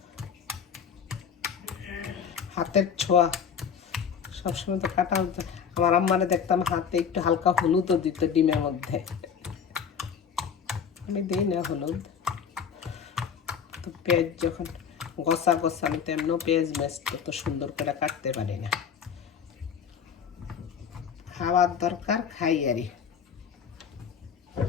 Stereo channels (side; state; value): right; quieter; 7.1 dB